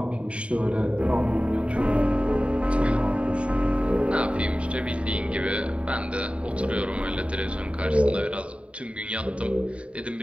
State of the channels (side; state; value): left; late; 0.061 ms